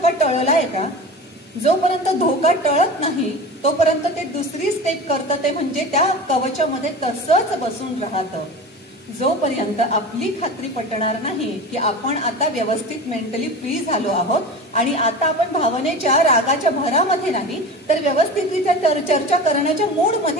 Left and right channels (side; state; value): both; normal; correlation 0.32